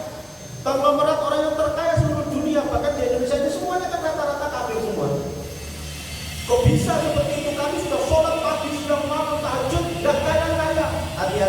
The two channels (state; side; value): identical; both; correlation 1.00